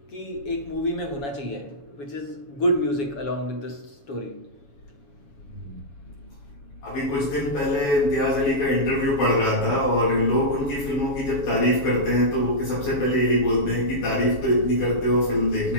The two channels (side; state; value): right; late; 7.2 ms